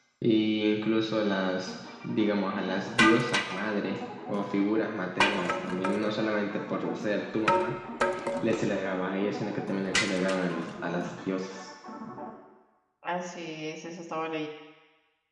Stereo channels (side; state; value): both; identical; correlation 1.00